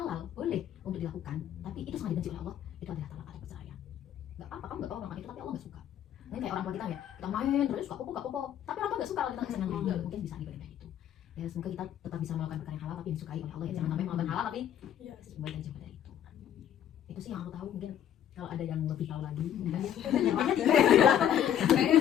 boleh untuk dilakukan tapi itu sangat dibenci oleh Allah itu adalah talak atau perceraian nggak apa-apa kamu nggak tahu orang itu tapi Allah nggak suka ini kayak orang tua kita ya kita main terus suka popo tapi orang tua nggak suka kalau kita nggak senang mungkin bisa dibandingkan itu ya semoga kita tetap bisa melakukan perkara yang halal tapi disukai oleh Allah ya jangan sampai melakukan halal tapi Iya. semoga kita jauh dari itu sih yang aku tahu mungkin kalau ada yang lebih tahu lagi Kayaknya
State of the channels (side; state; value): right; quieter; 10.2 dB